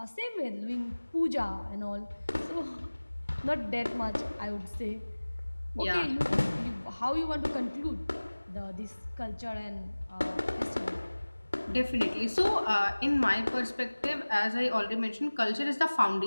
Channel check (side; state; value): both; inverted; correlation -1.00